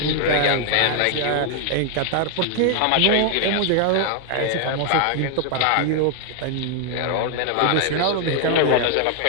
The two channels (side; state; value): both; different; correlation 0.00